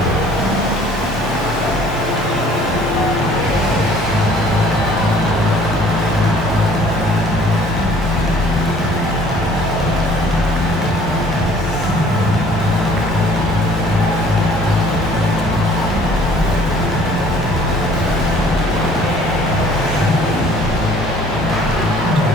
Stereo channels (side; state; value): both; normal; correlation 0.55